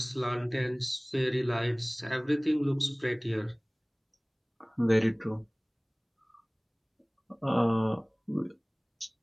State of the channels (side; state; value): both; identical; correlation 1.00